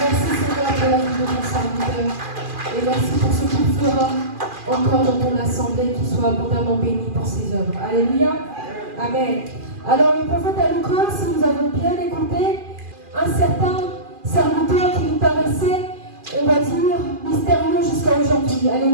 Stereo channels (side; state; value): left; late; 2.4 ms